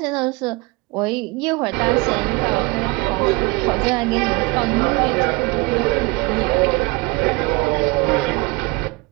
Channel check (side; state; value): left; quieter; 25.7 dB